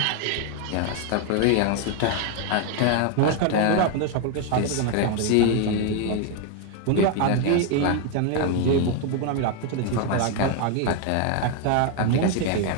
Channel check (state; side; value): different; both; correlation 0.01